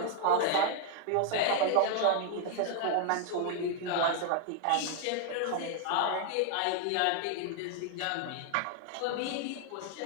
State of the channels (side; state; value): both; different; correlation 0.00